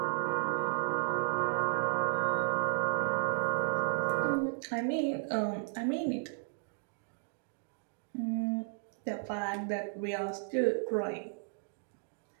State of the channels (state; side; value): silent; left; digital silence